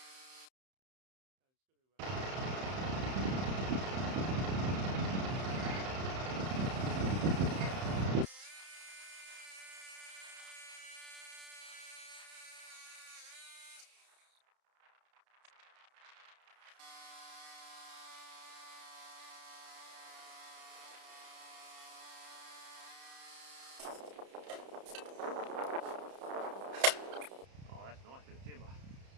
Oh, that's nice bit of timber.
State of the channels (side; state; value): left; late; 31 ms